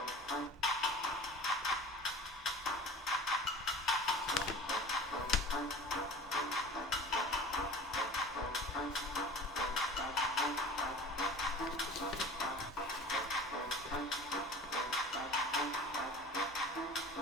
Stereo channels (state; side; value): normal; both; correlation 0.39